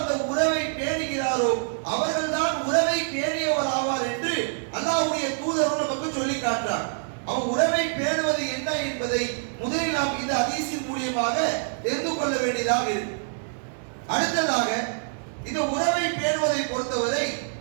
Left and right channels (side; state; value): left; silent; digital silence